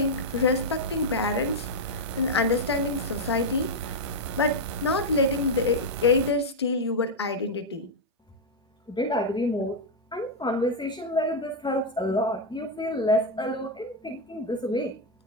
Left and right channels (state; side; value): normal; both; correlation 0.00